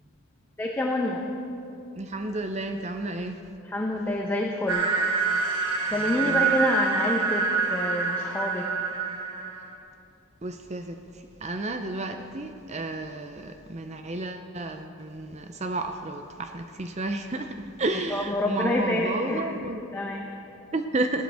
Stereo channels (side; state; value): both; normal; correlation 0.42